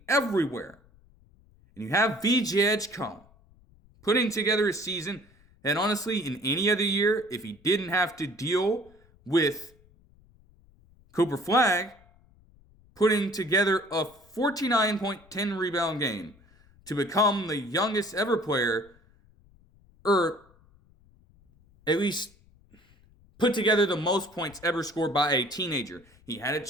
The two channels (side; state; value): left; noise; rumble, 29 dB below the sound